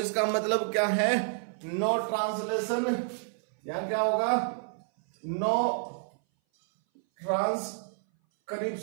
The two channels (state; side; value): silent; left; 58 dB below the other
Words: मतलब क्या है, नो ट्रांसलेशन, यहां क्या होगा, नो